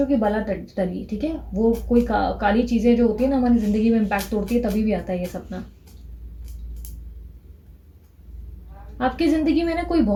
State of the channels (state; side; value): identical; both; correlation 1.00